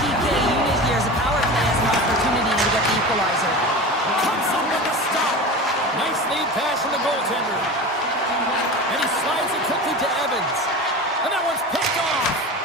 PK unit here as the power play has an opportunity to get the equalizer. Comes up with the stop. Nice lead pass from the goaltender. And he slides it quickly to Evans. And that one's picked off.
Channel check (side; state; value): both; normal; correlation 0.30